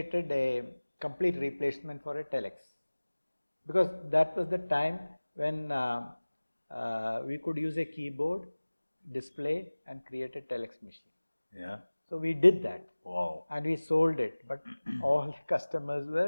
a complete replacement for a telex, because that was the time when we could use a keyboard, display, and create a telex machine. Yeah. So we did that. Wow. And we sold it, but all the customers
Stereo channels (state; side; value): inverted; both; correlation -1.00